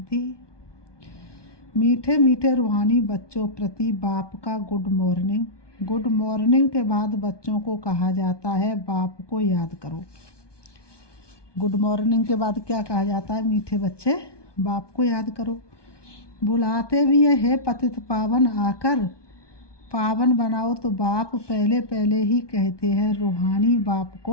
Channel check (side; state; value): right; late; 1.2 ms